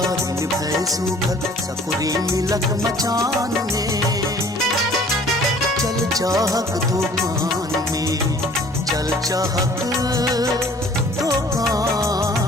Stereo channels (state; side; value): normal; both; correlation 0.53